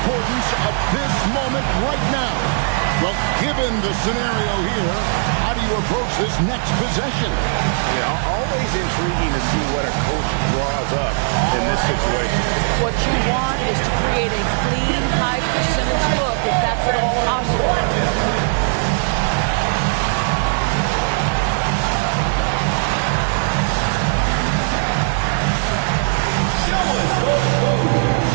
of this moment right now. Well, given the scenario here, how do you approach this next possession? Yeah, always intriguing to see what a coach draws up in this situation. What you want is to create a clean, high percentage look if that's at all possible. Show us those moves.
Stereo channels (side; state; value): left; silent; digital silence